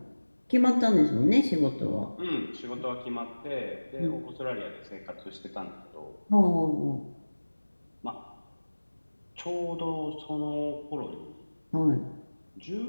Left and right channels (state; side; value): inverted; both; correlation -1.00